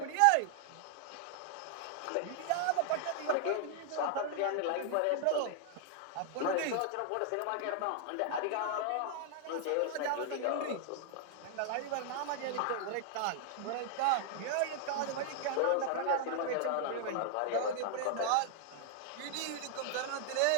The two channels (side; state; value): both; different; correlation 0.00